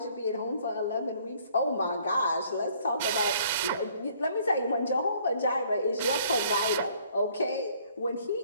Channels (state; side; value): inverted; both; correlation -0.60